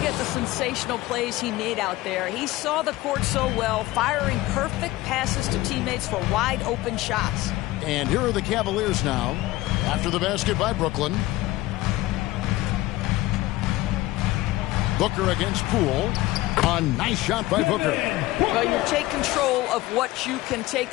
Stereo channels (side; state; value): right; quieter; 17.8 dB